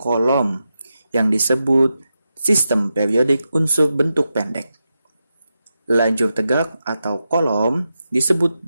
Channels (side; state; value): both; inverted; correlation -0.88